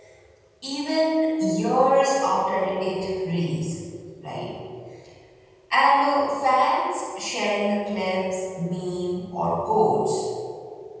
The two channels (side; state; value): both; identical; correlation 1.00